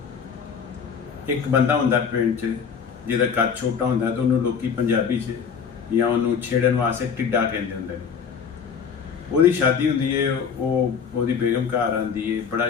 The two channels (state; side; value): quieter; right; 6.6 dB